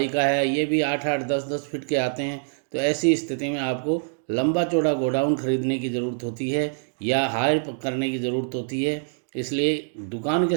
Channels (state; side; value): silent; left; digital silence